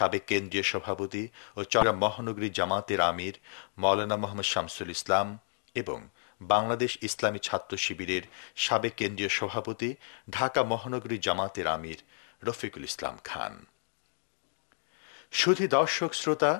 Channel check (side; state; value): right; silent; digital silence